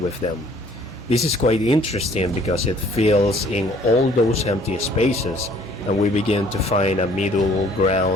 them. This is quite interesting because it fills in all those empty spaces and we begin to find a middle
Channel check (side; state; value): both; normal; correlation 0.58